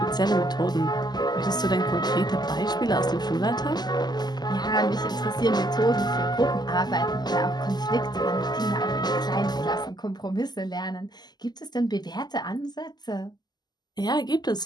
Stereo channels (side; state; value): right; late; 0.20 ms